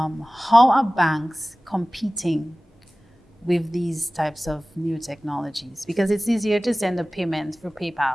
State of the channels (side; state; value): both; normal; correlation 0.98